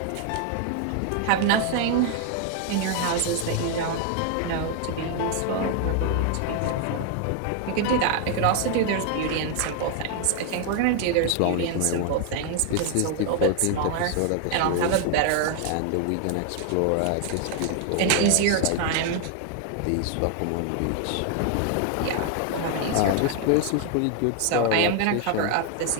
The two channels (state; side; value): different; both; correlation 0.00